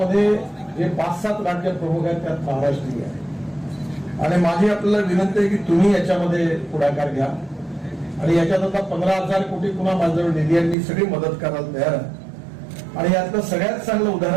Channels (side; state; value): left; drops out; at 10.8 s